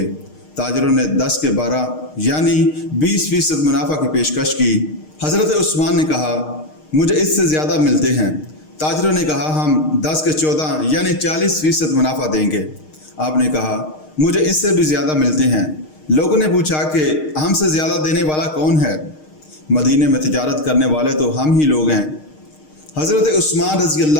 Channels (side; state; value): right; late; 6.5 ms